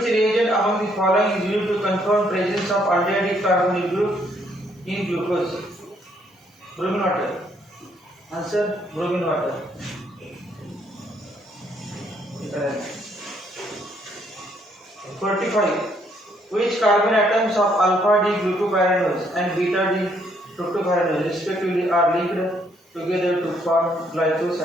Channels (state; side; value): normal; both; correlation 0.69